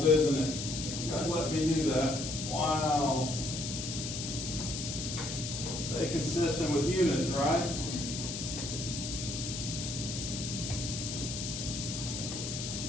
isn't it? You guys let me do that. Wow. Stay consistent with units, right?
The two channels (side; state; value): left; noise; hiss, 5 dB below the sound